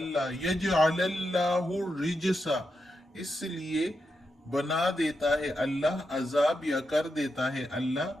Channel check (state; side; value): normal; both; correlation 0.86